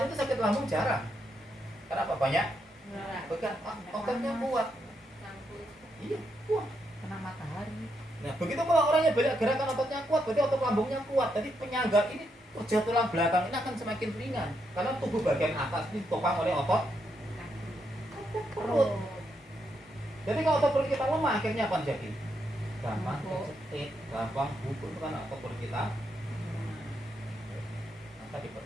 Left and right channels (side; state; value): both; normal; correlation 0.80